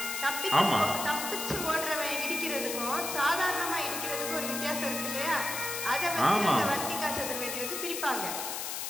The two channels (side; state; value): left; noise; hiss, 4 dB below the sound